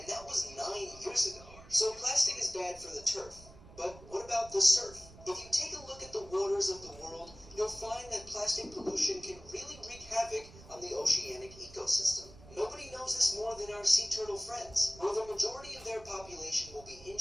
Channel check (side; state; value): right; noise; rumble, 19 dB below the sound